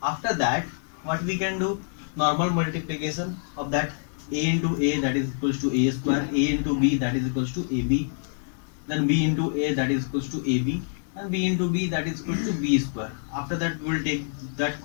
After that, what we can do, normal multiplication of that a into a, that is equals to a square, a into b, that is equals to ab, then b into a, that is equals to ab, and b into b, that is equals to b square. After that, we will take that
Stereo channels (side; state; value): right; silent; digital silence